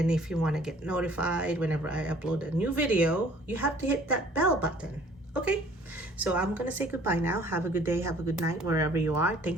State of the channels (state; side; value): normal; both; correlation 0.54